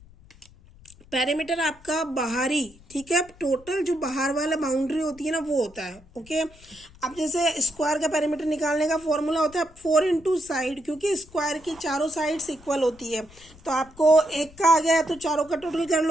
पेरीमीटर आपका बाहरी, ठीक है, टोटल जो बाहर वाला बाउंड्री होती है ना वो होता है। ओके, अब जैसे स्क्वायर का पेरीमीटर निकालने का फॉर्मूला होता है 4 इंटू साइड, क्योंकि स्क्वायर की चारों साइड्स इक्वल होती है, तो आपको एक का आ गया तो चारों का टोटल कर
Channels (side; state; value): left; noise; rumble, 24 dB below the sound